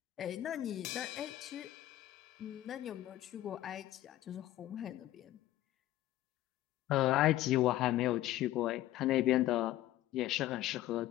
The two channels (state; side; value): quieter; right; 14.7 dB